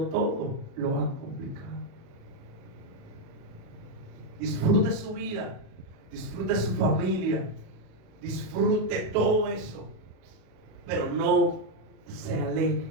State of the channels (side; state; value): left; late; 37 ms